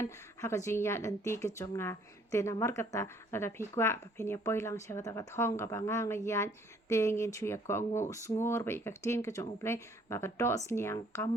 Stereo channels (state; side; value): normal; both; correlation 0.61